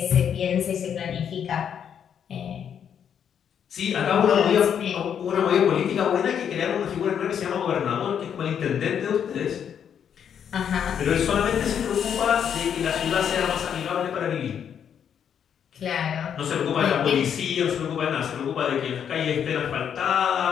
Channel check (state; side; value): quieter; right; 8.3 dB